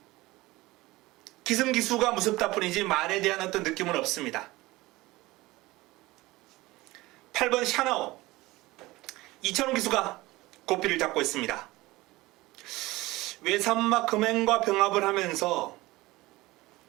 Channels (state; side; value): quieter; left; 19.7 dB